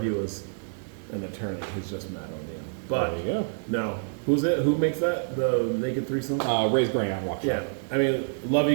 was an attorney who's just mad on you. But There you go. no, who's it? Who makes that? The Naked Threesome? Ray's Grain out in Waukesha. Yeah, I mean, love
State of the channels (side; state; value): left; silent; digital silence